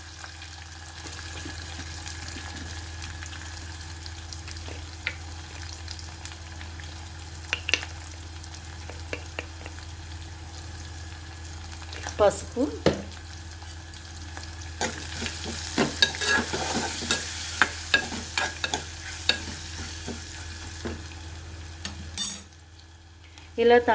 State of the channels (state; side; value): identical; both; correlation 1.00